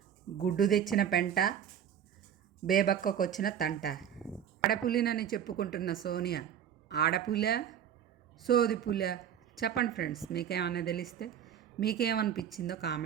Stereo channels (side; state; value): left; quieter; 9.2 dB